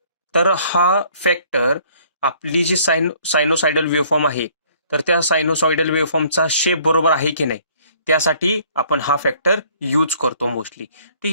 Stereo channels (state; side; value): inverted; both; correlation -0.59